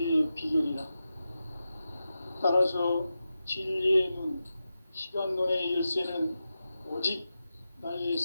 비결이라. 따라서 진리의 눈, 시간론의 열쇠는 오직 나의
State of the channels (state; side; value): inverted; both; correlation -0.91